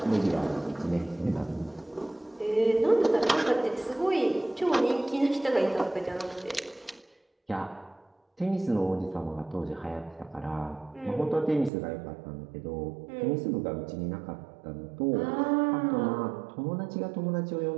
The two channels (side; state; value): left; drops out; at 11.7 s